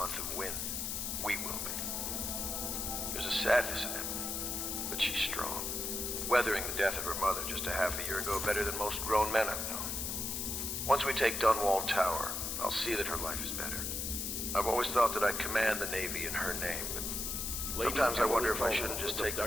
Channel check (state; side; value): noise; left; hiss, 2 dB below the sound